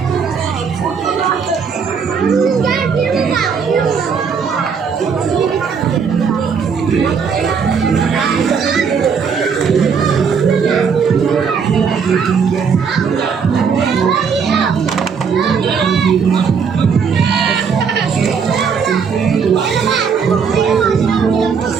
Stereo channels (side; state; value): left; quieter; 6.1 dB